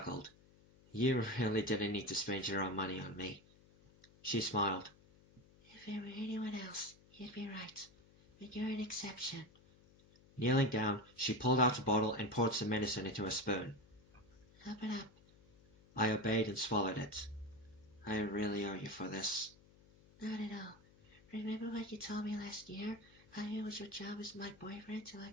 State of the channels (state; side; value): noise; left; hum, 26 dB below the sound